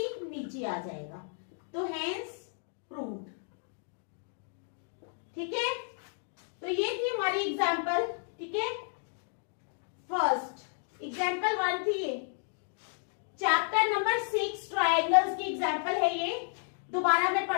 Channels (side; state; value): right; silent; 56 dB below the other